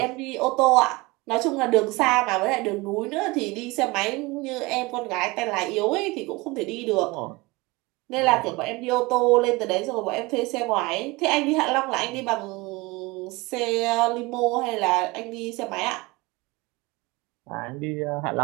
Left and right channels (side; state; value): left; quieter; 23.3 dB